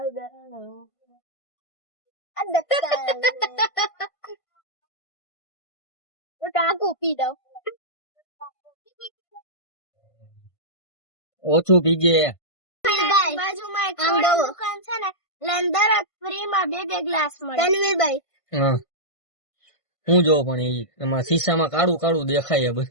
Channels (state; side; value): late; right; 1.5 ms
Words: ટાંકું પી દઉં. ઓછું પીજે. બાજુમાં એક દુકાન છે ને, લેન્ડર ફ્રીમાં 2 ગ્લાસ મળે. તનવીરભાઈ હા હું જો પણ એમાં શીશામાં કાળું કાળું દેખાય